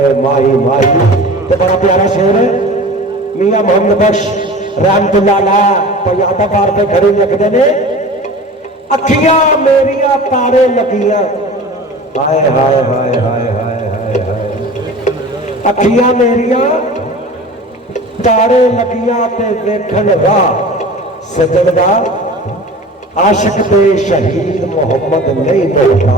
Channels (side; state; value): both; normal; correlation 0.38